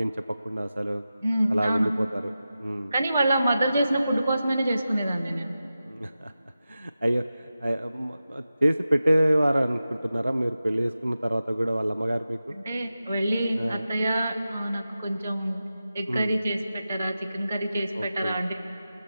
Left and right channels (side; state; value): both; inverted; correlation -0.93